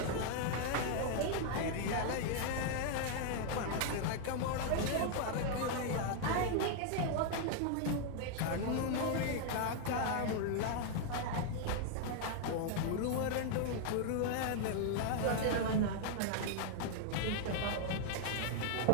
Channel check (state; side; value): different; both; correlation 0.00